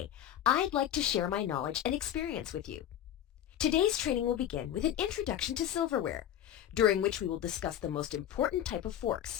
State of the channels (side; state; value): right; quieter; 11.0 dB